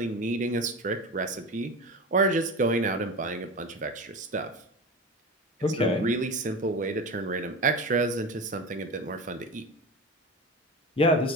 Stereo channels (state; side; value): normal; both; correlation 0.27